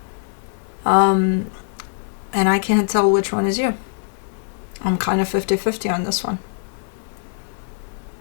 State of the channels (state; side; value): silent; right; digital silence